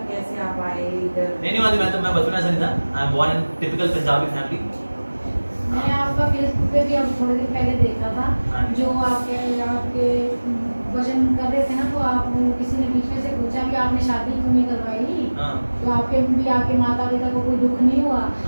कैसे आप आए इधर? नहीं मैं बचपन ऐसा नहीं था। I am born in typical Punjabi family. मैंने आपका फेसबुक पे भी अब थोड़े दिन पहले देखा था, हाँ। जो आपके भजन कर रहे थे ना, तो आप किसी ने बीच में से पूछा कि आपने शादी क्यों नहीं करवाई, हाँ। तो आपके माता पिता को कोई दुख नहीं हुआ,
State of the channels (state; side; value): inverted; both; correlation -1.00